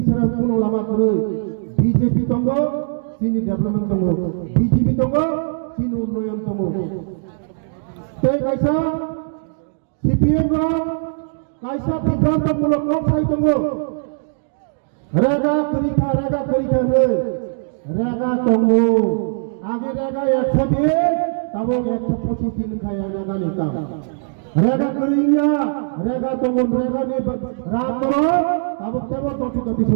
ছাড়া কোন লামা করে বিজেপি তঙ্গ চিনি ডেভেলপমেন্ট তঙ্গ, বিজেপি তঙ্গ চিনি উন্নয়ন তঙ্গ। তাই কাইসা সিপিএম কাইসা বিভ্রান্তমূলক অবস্থায় তঙ্গ রেগা করিখা নেই, রেগা তঙ্গ আগে রেগা 100 দিয়ে তবে 125 দিন খায় রেগা নিতাম, রেগা করিয়া রেগা তঙ্গ রেগা নিয়ে রাত করো তবে কেবল তত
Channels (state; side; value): silent; left; digital silence